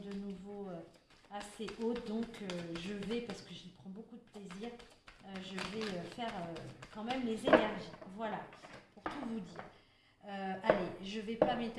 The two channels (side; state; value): both; identical; correlation 1.00